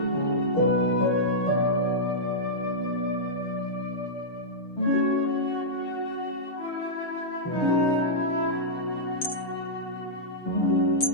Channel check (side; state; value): right; late; 6.6 ms